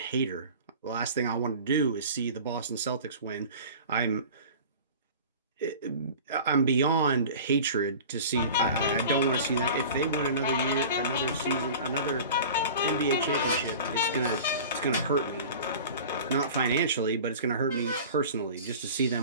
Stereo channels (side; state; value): both; inverted; correlation -0.39